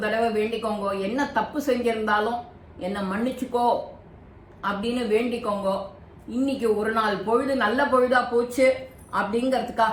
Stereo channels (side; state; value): both; identical; correlation 1.00